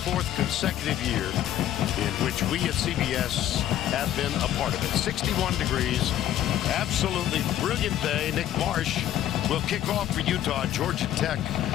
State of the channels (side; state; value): right; quieter; 11.9 dB